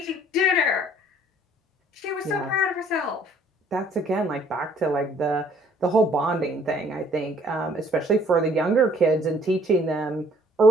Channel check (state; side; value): normal; both; correlation 0.59